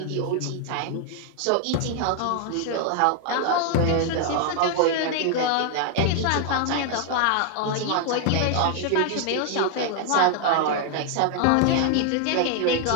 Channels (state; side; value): different; both; correlation 0.00